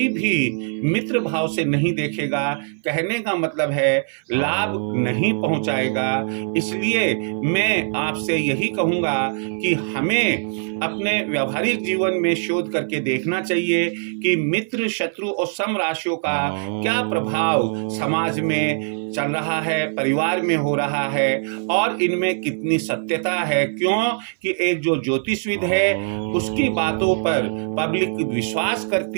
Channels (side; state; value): left; silent; 59 dB below the other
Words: भी मित्र भाव से नहीं देखेगा। कहने का मतलब है लाभ नहीं पहुंचाएगा। इसलिए मैं आपसे यही कहूंगा कि हमें अपने व्यावहारिक जीवन में शोध करके देखना चाहिए कि मित्र, शत्रु और सम राशियों का क्या प्रभाव समाज में चल रहा है, परिवार में हो रहा है और इनमें कितनी सत्यता है। क्यों कि एक जो ज्योतिषविद है उसकी बातों पर पब्लिक विश्वास